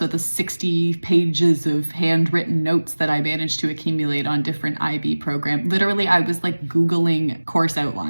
the 60 pages of handwritten notes that I managed to accumulate on different IB programs. Literally, I was like Googling course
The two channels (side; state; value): both; inverted; correlation -1.00